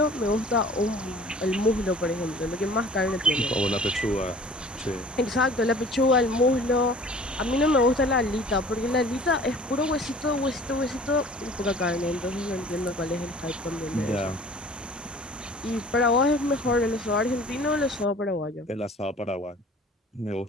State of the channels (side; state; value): both; normal; correlation 0.47